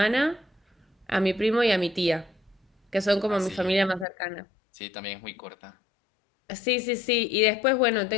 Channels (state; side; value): drops out; right; at 4.0 s